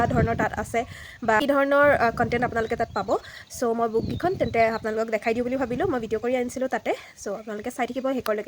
ধৰণৰ তাত আছে বা কি ধৰণৰ কণ্টেণ্ট আপোনালোকে তাত পাব। চ' মই বুককেইখন তেন্তে আপোনালোকক দেখাই দিওঁ বুলি ভাবিলোঁ। মই ভিডিঅ' কৰি আনিছিলোঁ তাতে। চ' আপোনালোকে চাই থাকিব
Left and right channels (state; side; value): identical; both; correlation 1.00